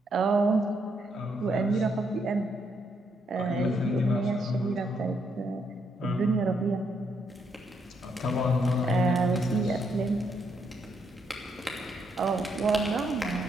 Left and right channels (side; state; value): both; normal; correlation 0.76